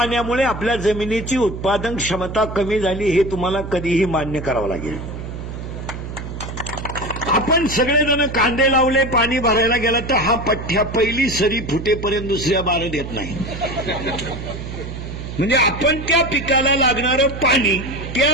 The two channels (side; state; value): right; noise; hum, 8 dB below the sound